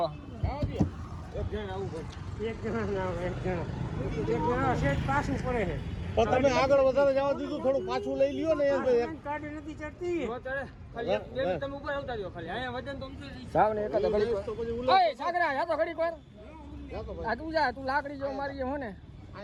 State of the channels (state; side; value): identical; both; correlation 1.00